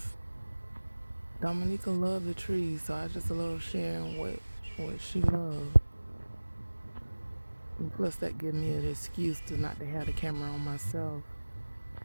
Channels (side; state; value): both; inverted; correlation -1.00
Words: Dominica loved the trees, so I just love sharing what she loved. And plus, that gives me an excuse to not to have the camera on myself.